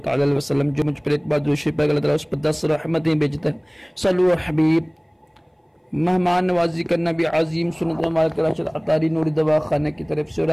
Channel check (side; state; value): both; identical; correlation 1.00